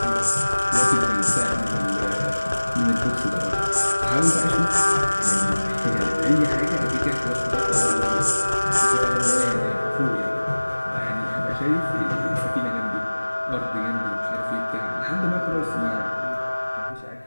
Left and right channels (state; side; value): inverted; both; correlation -1.00